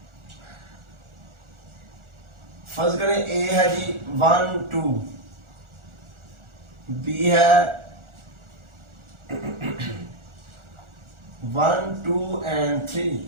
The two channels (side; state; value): left; late; 1.4 ms